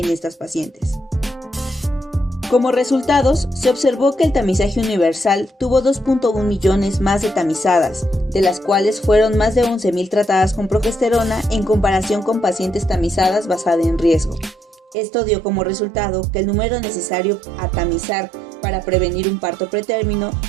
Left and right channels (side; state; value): left; drops out; at 15.0 s